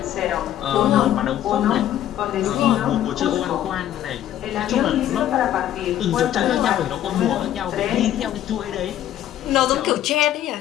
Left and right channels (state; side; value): quieter; right; 11.9 dB